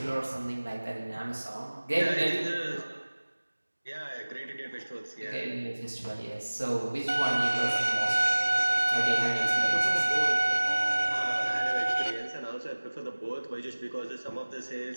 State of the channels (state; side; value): inverted; both; correlation -1.00